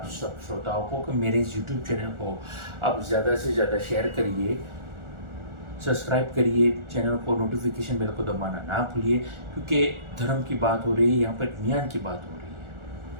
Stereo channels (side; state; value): left; late; 1.4 ms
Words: सब श्रोताओं को कि मेरे इस यूट्यूब चैनल को आप ज़्यादा से ज़्यादा शेयर करिए, सब्सक्राइब करिए, चैनल को नोटिफिकेशन बेल को दबाना ना भूलिए, क्योंकि धर्म की बात हो रही है, यहाँ पर ज्ञान की बात हो रही